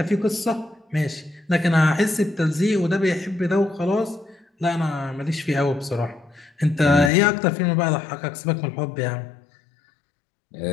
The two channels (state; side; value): drops out; right; at 7.1 s